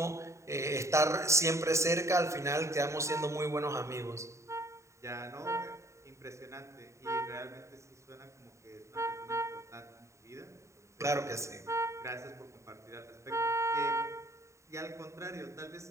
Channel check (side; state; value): left; late; 0.14 ms